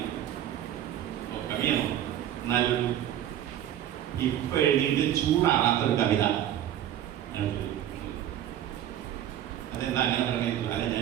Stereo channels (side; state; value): left; quieter; 11.3 dB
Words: കവിയാണോ? എന്നാലും ഇപ്പൊ എഴുതിയിട്ട് ചൂടാറാത്തൊരു കവിത. അതെന്താ അങ്ങനെ പറഞ്ഞിട്ടില്ല? അല്ല,